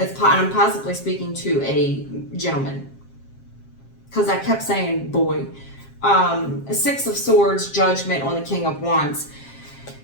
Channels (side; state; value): right; late; 7.5 ms